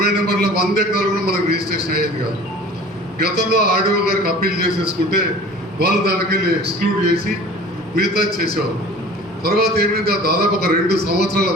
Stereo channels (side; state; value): both; normal; correlation 0.44